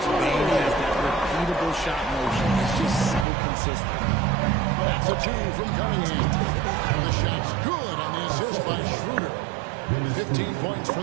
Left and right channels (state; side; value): drops out; left; at 3.2 s